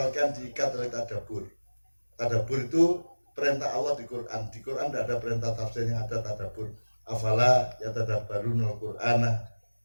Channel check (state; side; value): inverted; both; correlation -1.00